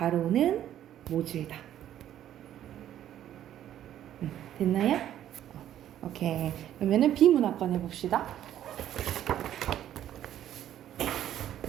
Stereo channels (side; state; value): left; quieter; 11.4 dB